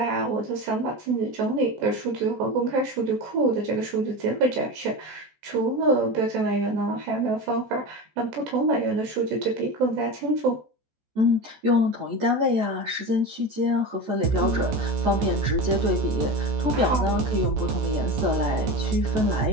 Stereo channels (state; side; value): late; left; 14 ms